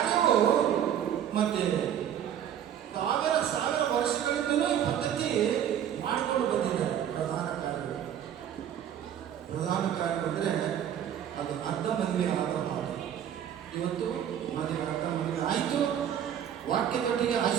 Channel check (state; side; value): quieter; left; 9.8 dB